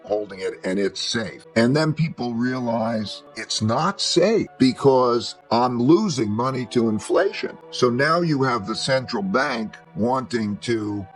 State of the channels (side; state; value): both; identical; correlation 1.00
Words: holding it and it's safe. And then people realize it's not safe because I'm losing money to inflation. So now you have the central bank wanting to